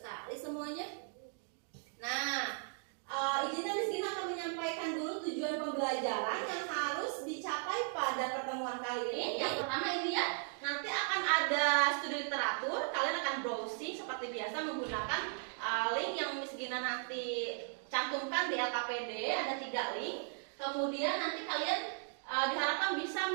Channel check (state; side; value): silent; left; 53 dB below the other